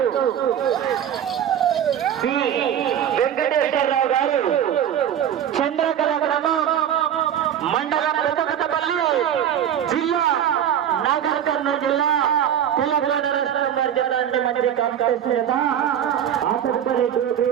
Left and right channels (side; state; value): left; quieter; 9.8 dB